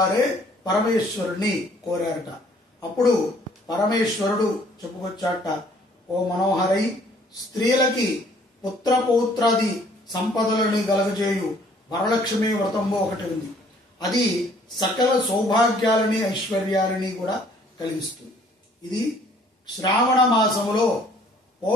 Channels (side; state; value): both; normal; correlation 0.59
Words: పరమేశ్వరుణ్ణి కోరారట. అప్పుడు పరమేశ్వరుడు చెప్పుకొచ్చాట, ఓ మనోహరై, స్త్రీలకి పుత్రపౌత్రాది సంపదలని కలగజేయు వరలక్ష్మి వ్రతము ఒకటి ఉంది. అది సకల సౌభాగ్యాలని ఐశ్వర్యాలని కూడా కలిగిస్తుంది. ఇది శ్రావణ మాసములో